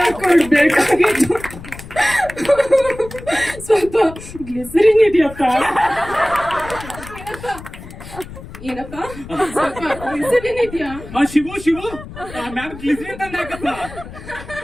ಸ್ವಲ್ಪ ಗ್ಲಿಸರಿನ್ ಇದೆಯಪ್ಪ? ಏನಪ್ಪ ಸ್ವಲ್ಪ ಗ್ಲಿಸರಿನ್ ಇದೆಯಾ? ಶಿವು ಮ್ಯಾಮ್ ಗ್ಲಿಸರಿನ್ ತಂದಾಕಪ್ಪ.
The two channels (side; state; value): left; noise; rumble, 14 dB below the sound